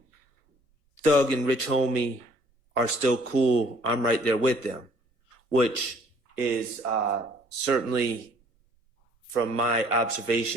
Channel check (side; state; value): left; late; 1.5 ms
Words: Thug and Rich Homie are still cool. I'm right there with them, which is certainly, from my